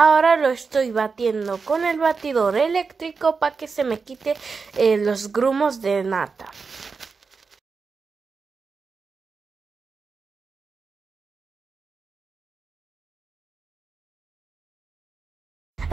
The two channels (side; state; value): left; quieter; 4.9 dB